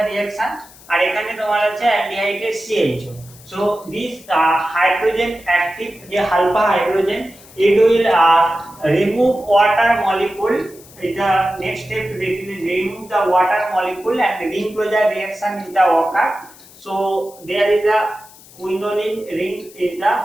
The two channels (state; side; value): noise; left; hiss, 22 dB below the sound